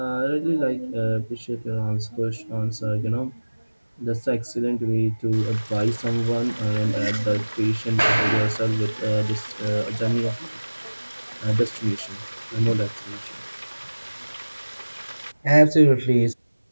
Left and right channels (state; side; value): inverted; both; correlation -1.00